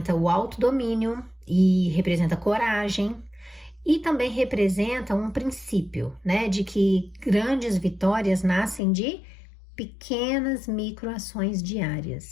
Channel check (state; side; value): drops out; right; at 8.8 s